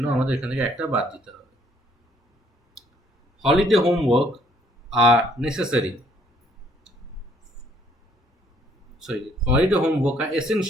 আমাদের এখান থেকে একটা বাদ দিতে হবে। Holiday homework R necessary, holiday homework are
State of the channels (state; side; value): normal; both; correlation 0.64